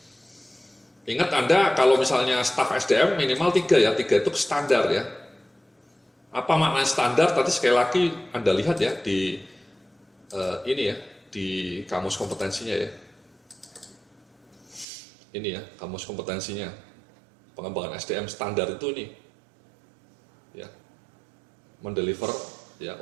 Ingat Anda kalau misalnya staf SDM minimal 3 ya, 3 itu standar ya. Apa makna standar? Tadi sekali lagi Anda lihat ya di ini ya, di kamus kompetensinya ya. Ini ya, kamus kompetensinya. Pengembangan SDM standar itu ini. Ya. Mendeliver ya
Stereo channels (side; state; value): left; drops out; at 14.9 s